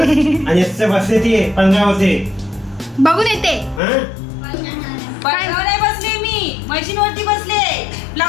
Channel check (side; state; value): right; drops out; at 3.8 s